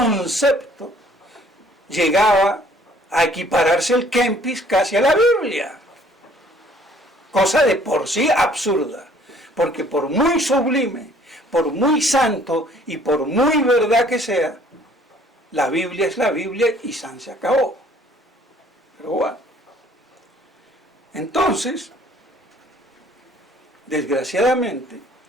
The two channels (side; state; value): both; normal; correlation 0.58